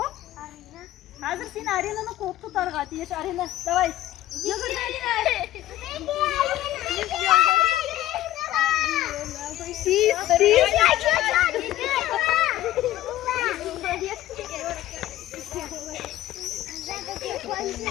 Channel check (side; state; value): right; quieter; 14.3 dB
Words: Arina. Hazır sen Arina'nı quvib tutarga teyish. Arina, davay. Yugur Arina.